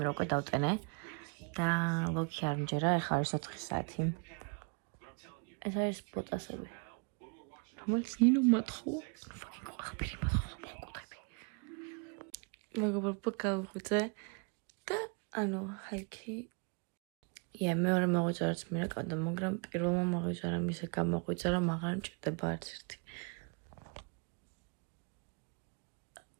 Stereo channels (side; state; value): left; quieter; 35.4 dB